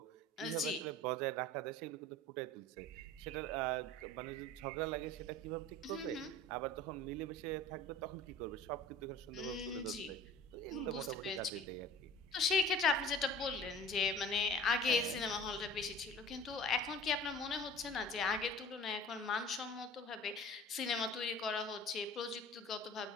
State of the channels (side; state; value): both; normal; correlation 0.43